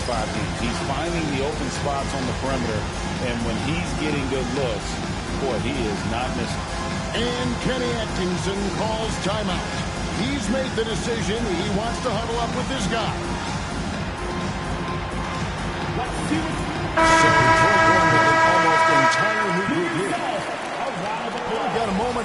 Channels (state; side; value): identical; both; correlation 1.00